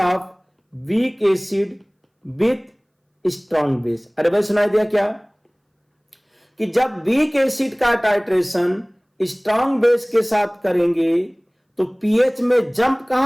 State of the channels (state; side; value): identical; both; correlation 1.00